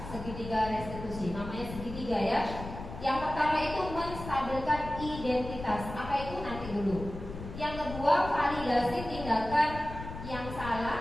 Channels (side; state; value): left; noise; rumble, 10 dB below the sound